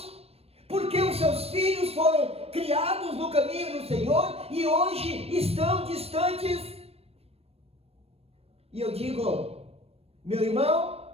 porque os seus filhos foram criados no caminho do Senhor e hoje estão distantes. E eu digo: meu irmão,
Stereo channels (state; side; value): late; left; 0.29 ms